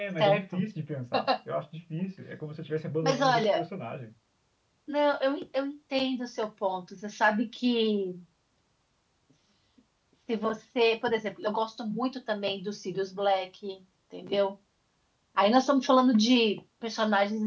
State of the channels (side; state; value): both; identical; correlation 1.00